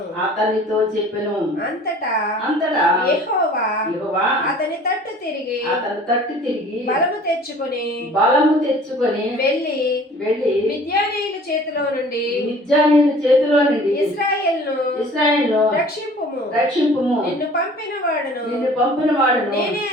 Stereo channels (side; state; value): both; normal; correlation 0.49